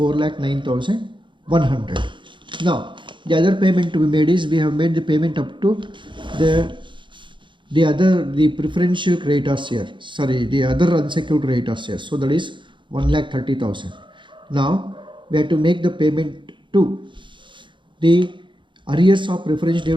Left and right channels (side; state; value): left; late; 0.23 ms